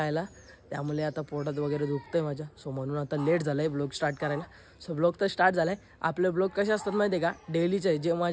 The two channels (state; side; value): identical; both; correlation 1.00